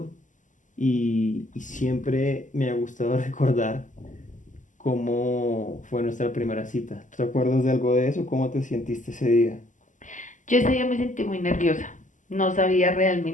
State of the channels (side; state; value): right; late; 0.37 ms